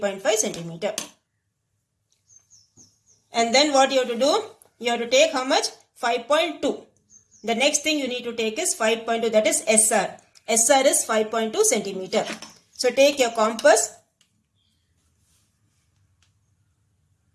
centimeter. And then what you have to do? You have to take how much? 5.2. The next thing you need to take is 5.2, that is SR. SR is 5.2 centimeter. So take your compass.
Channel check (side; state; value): both; identical; correlation 1.00